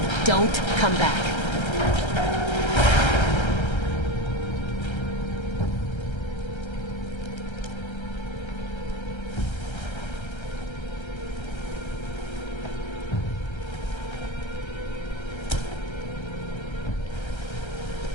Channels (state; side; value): late; right; 1.3 ms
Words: Don't come back.